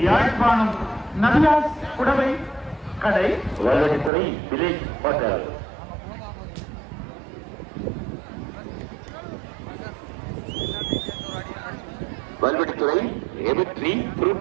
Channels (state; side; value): drops out; left; at 4.1 s